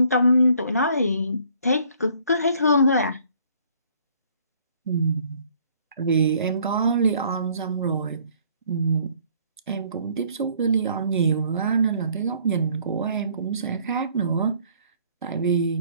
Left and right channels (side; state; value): both; inverted; correlation -0.60